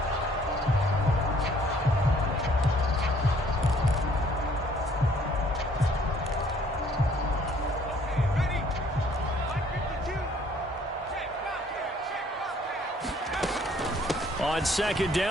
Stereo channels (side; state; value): both; normal; correlation 0.60